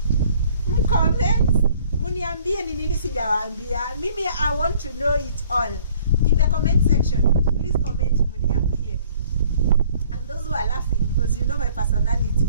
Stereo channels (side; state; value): both; inverted; correlation -0.55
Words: muniambie ni nini sijawaambia. Mimi I want to know it all. In the comment section, please comment muniambie. And those who are laughing, because you know my personality,